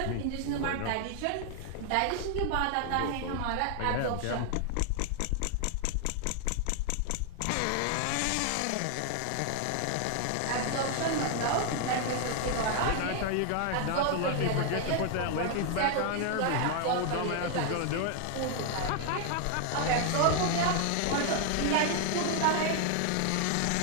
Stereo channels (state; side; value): different; both; correlation 0.00